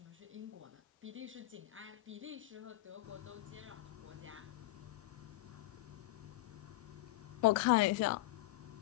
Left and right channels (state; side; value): quieter; right; 17.5 dB